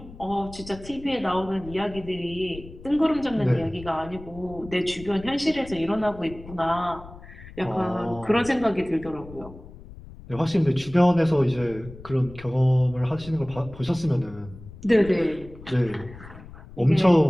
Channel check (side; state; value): left; noise; rumble, 17 dB below the sound